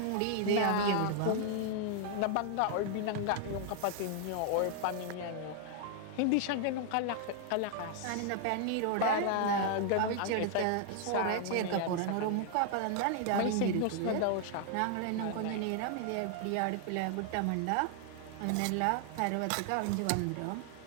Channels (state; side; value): different; both; correlation 0.00